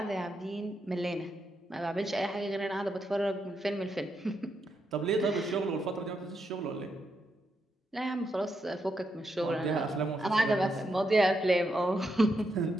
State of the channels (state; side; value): normal; both; correlation 0.82